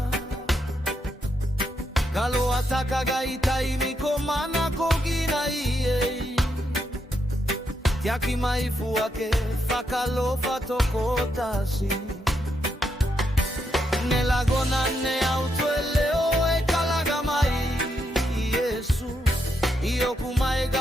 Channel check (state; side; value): normal; both; correlation 0.80